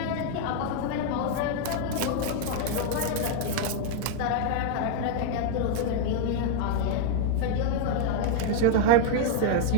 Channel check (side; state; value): both; different; correlation 0.00